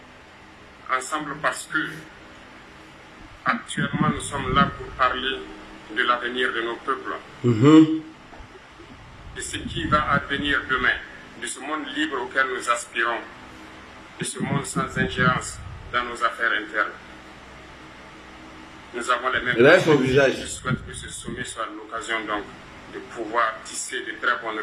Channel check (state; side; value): identical; both; correlation 1.00